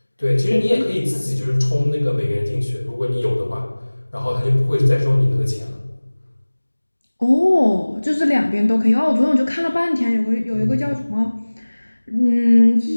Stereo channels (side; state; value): both; inverted; correlation -1.00